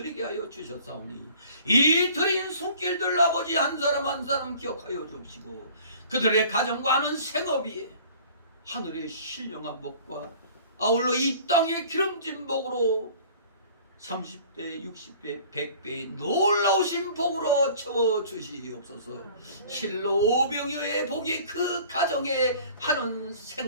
하여 주셨사오니 이 드린 손길들 아버지 한 사람 한 사람 기억하여 주시고 그들의 가정과 하는 생업이 하늘의 신령한 복과 아울러 이 땅의 기름진 복으로 30배, 60배, 100배의 놀라우신 복으로 채워주시옵소서. 실로 오병이어의 복이 그 가정에 하는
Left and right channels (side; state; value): both; inverted; correlation -0.49